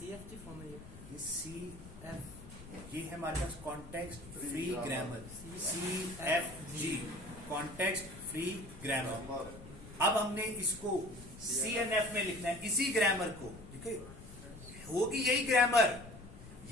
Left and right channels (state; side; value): noise; left; rumble, 16 dB below the sound